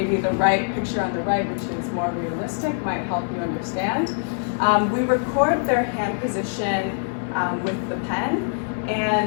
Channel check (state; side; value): silent; right; digital silence